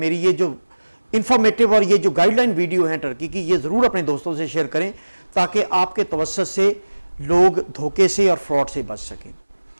ये जो इन्फॉर्मेटिव और ये जो गाइडलाइन वीडियो है टर्की की, ये ज़रूर अपने दोस्तों से शेयर करें ताकि आपके तवज्जुह से लोग धोखे से और फ्रॉड से बच सकें।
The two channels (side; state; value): both; inverted; correlation -1.00